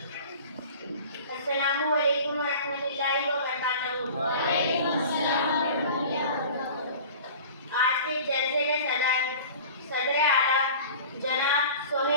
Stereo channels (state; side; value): inverted; both; correlation -0.41